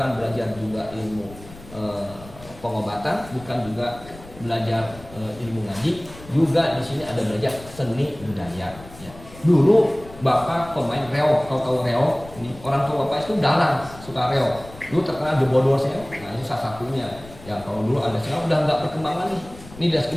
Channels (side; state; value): left; noise; rumble, 18 dB below the sound